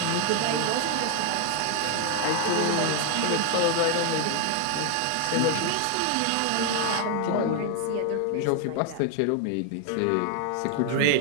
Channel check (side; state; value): both; different; correlation 0.00